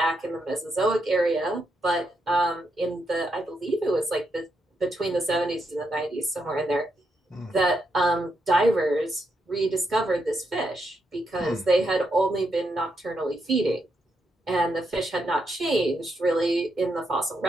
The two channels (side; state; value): both; normal; correlation 0.81